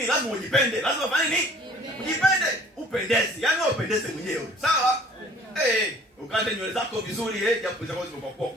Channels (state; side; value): normal; both; correlation 0.52